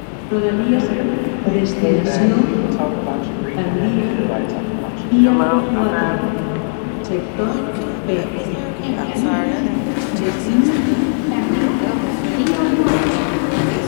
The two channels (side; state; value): right; silent; digital silence